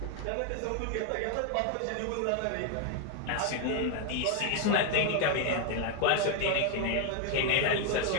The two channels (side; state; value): both; different; correlation 0.01